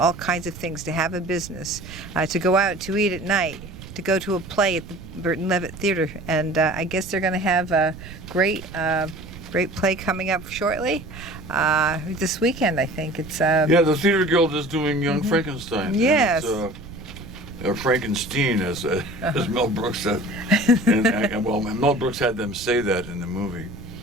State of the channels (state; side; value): noise; right; rumble, 14 dB below the sound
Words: kinds of things, to have a business, to go out to eat at night, to go to a play at the Burton Levitt Theater, and I guess they're going to have a great play coming up shortly this weekend. I think it's the Theater Guild is doing Young Frankenstein. Yes. Frankenstein, as Mel Brooks said, and Mel Brooks had them say that in the movie.